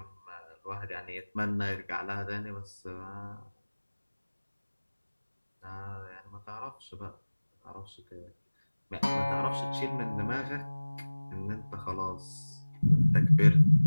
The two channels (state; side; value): inverted; both; correlation -1.00